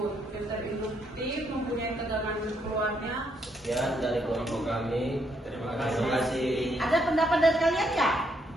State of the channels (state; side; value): normal; both; correlation 0.74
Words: Filter induktif mempunyai tegangan keluarnya. Ya, dari kelompok kami. Terima kasih. Ada pendapat dari kalian nggak